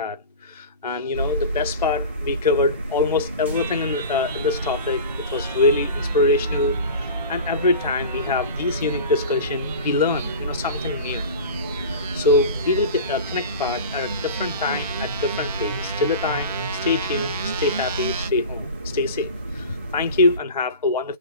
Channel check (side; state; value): both; inverted; correlation -0.34